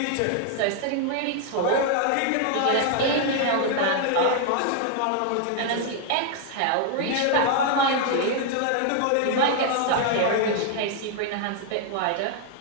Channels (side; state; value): both; different; correlation 0.00